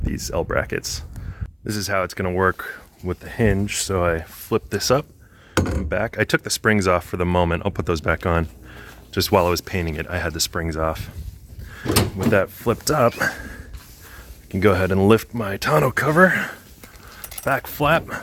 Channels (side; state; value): both; identical; correlation 1.00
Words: these L brackets. This is how it's going to work with the hinge. So I flip this up and back. I took the springs off for the moment. I'll put those back on. Just while I was painting it, I had the springs off. With that flipped up, I can go ahead and lift my tonneau cover, back flap,